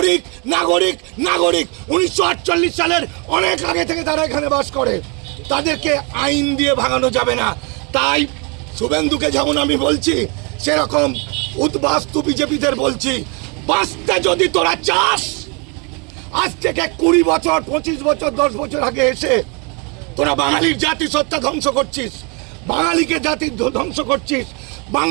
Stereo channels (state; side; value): quieter; left; 32.6 dB